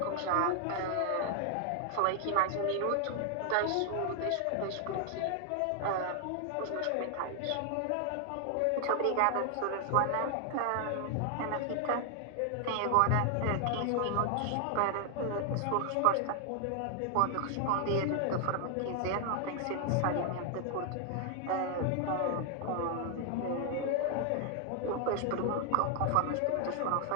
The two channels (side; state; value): both; different; correlation 0.00